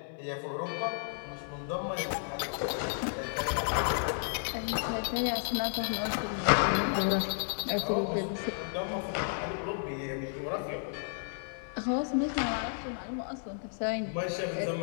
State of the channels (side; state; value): right; silent; 56 dB below the other